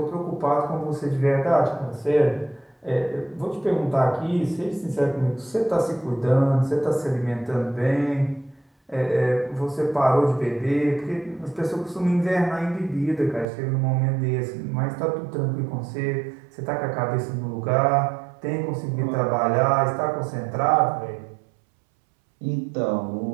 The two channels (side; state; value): left; drops out; at 13.5 s